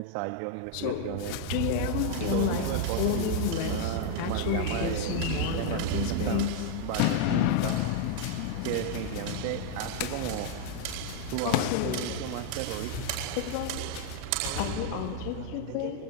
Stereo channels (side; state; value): both; different; correlation 0.00